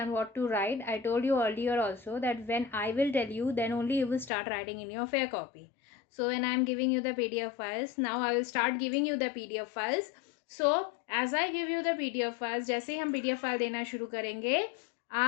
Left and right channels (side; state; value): right; drops out; at 4.3 s